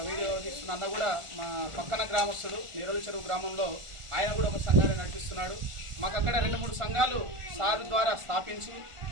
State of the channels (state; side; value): late; left; 1.4 ms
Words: వీడియో తీస్తున్న అన్న కూడా మా పక్కన గ్రామస్తుడు నీరోలి చెరువు గ్రామంలో ఆయన కూడా ఒక సంఘాన్ని నడిపిస్తున్నాడు. మాకు అక్కడ 2-3 సంఘాలు సార్ ద్వారా స్థాపించి